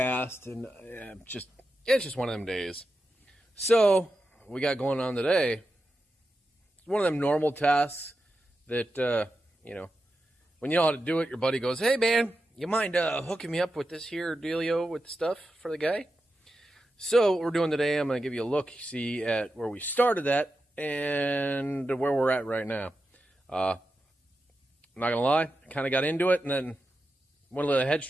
and it's just one of them days. So what we got going on today, it's one of them normal tasks that when you know how to do it, your buddy goes, "Hey man, you mind hooking me up with this here dealio with the stuff for the guy?" So what we're doing today, I'm going to give you a look, see at where we started at and where we're at right now. I'm not going to lie, I kind of got into it and then went a little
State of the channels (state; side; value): normal; both; correlation 0.90